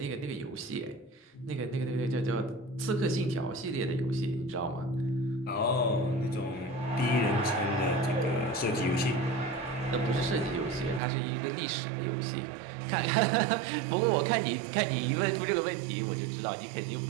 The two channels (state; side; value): drops out; left; at 11.0 s